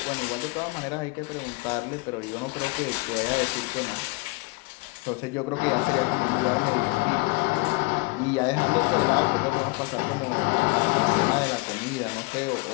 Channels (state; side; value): quieter; right; 26.4 dB